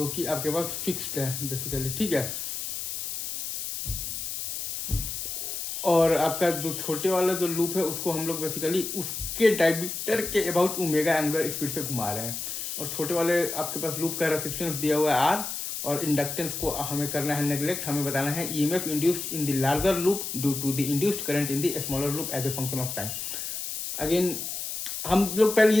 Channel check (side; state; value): left; noise; hiss, 5 dB below the sound